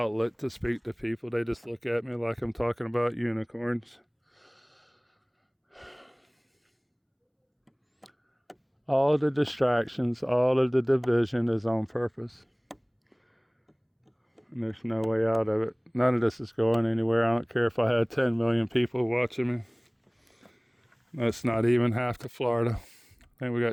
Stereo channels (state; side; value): identical; both; correlation 1.00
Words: to speak to people. They just look at me like I'm talking about unicorns. All the distractions, all of the division is on purpose. And there's no way out of it. None of this is going anywhere. I don't care if I had 10 million people watching me. That's not even half to Florida. I think we